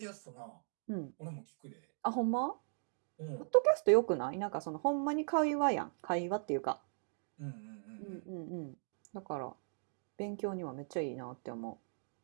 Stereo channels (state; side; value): silent; left; digital silence